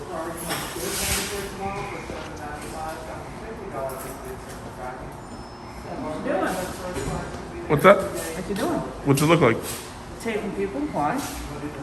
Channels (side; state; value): both; identical; correlation 1.00